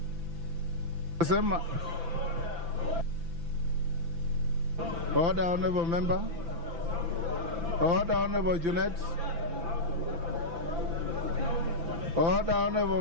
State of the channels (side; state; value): left; late; 5.9 ms